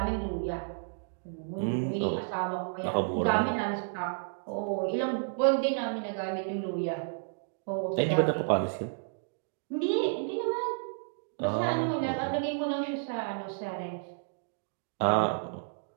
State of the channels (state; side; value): silent; left; digital silence